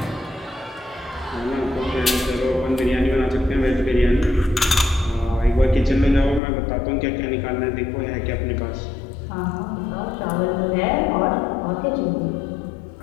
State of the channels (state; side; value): drops out; right; at 6.4 s